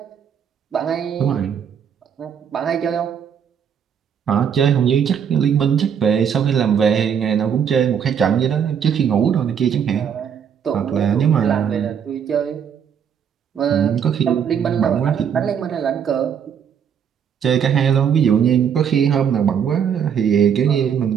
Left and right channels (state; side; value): quieter; left; 7.9 dB